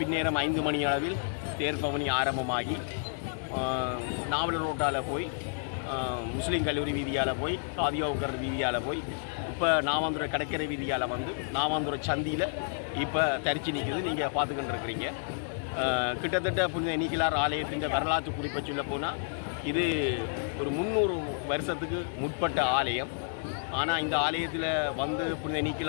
5 மணி அளவில் தேர்பவனி ஆரம்பமாகி நாவலர் ரோட்டால் போய் முஸ்லீம் கல்லூரி வீதியால் போய் காதியோக்கர் வீதியால் போய் இப்போ நாவாந்துறை கடற்கரை வீதியால் வந்து நாவாந்துறை சந்தியில் இப்போ தரிச்சு நிற்குது. நீங்கள் பார்த்துக்கிட்டு இருக்கிறீங்க. கிட்டத்தட்ட புனித நீக்கிலார் ஆலயத்தின் வரலாற்று குறிப்பை சொல்ல போனால் இது ஒரு 300 வருஷத்துக்கு முற்பட்ட ஆலயம். ஆனால் இந்த ஆலயத்தில் வந்து புனித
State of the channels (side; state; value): right; silent; digital silence